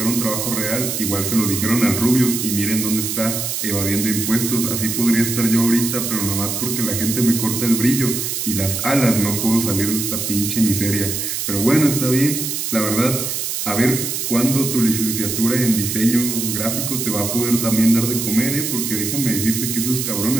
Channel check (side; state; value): right; noise; hiss, 2 dB below the sound